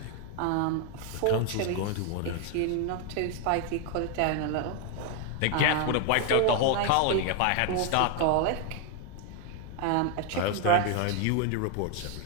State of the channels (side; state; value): both; different; correlation 0.01